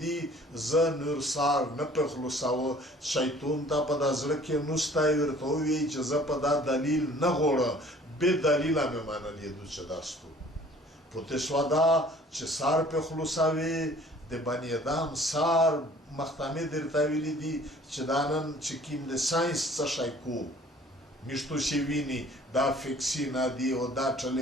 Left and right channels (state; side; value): normal; both; correlation 0.52